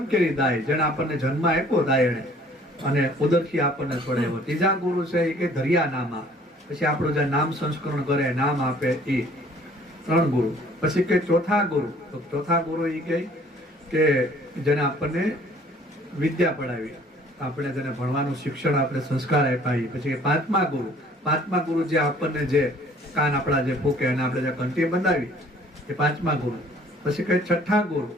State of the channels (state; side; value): normal; both; correlation 0.55